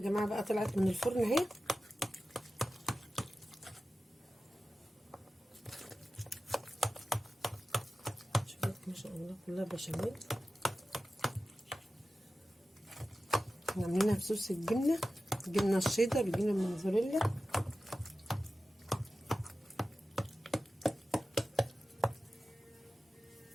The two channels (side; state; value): both; normal; correlation 0.94